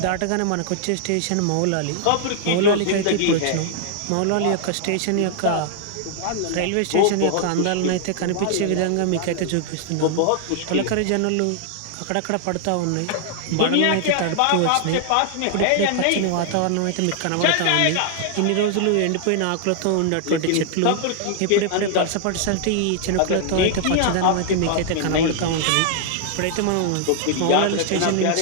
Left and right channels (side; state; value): both; different; correlation 0.00